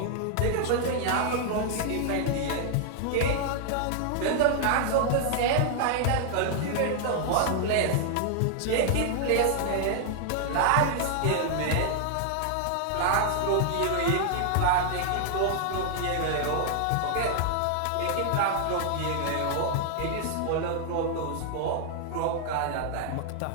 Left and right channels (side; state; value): both; different; correlation 0.00